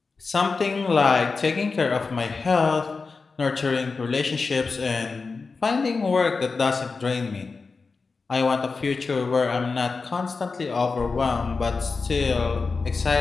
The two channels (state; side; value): quieter; right; 4.4 dB